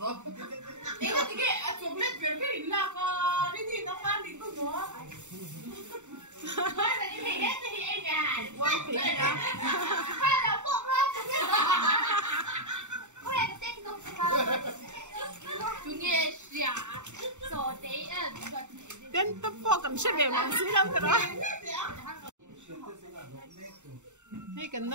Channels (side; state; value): left; late; 0.84 ms